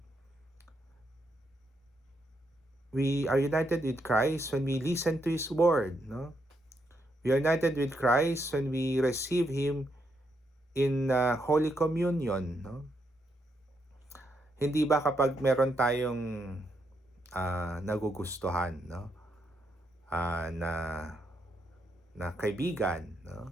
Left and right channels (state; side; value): normal; both; correlation 0.79